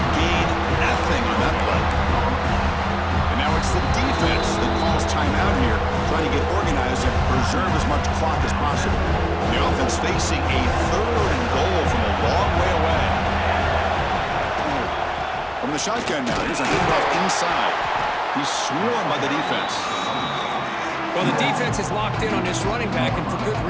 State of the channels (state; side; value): identical; both; correlation 1.00